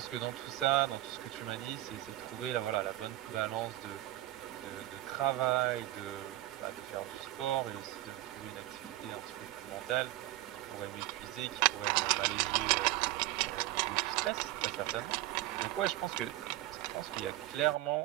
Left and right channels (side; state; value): left; quieter; 16.3 dB